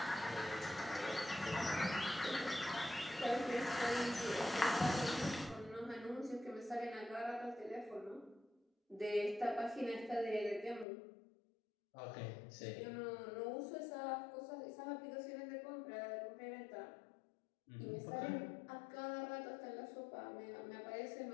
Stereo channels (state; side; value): drops out; right; at 10.9 s